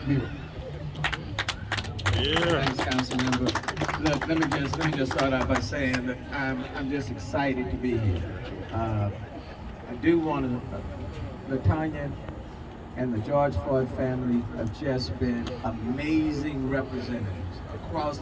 mural. Thanks, Councilmember. Look, let me just start out by saying that I'm just excited to be here. I do want to, Latanya and the George Floyd family have just been amazing representatives across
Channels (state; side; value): identical; both; correlation 1.00